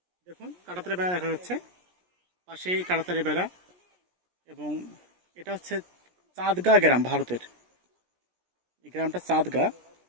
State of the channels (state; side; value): late; left; 17 ms